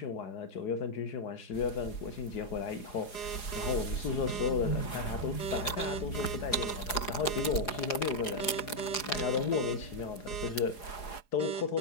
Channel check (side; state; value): right; late; 4.8 ms